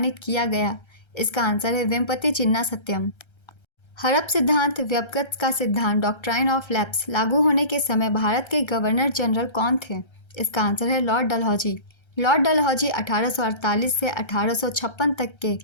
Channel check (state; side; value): late; right; 1.3 ms